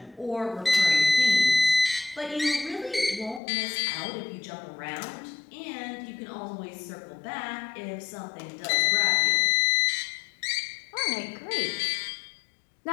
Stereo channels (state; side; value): drops out; right; at 3.4 s